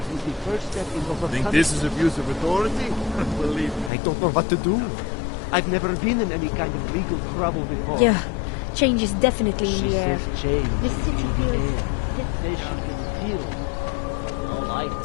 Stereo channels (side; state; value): right; drops out; at 3.9 s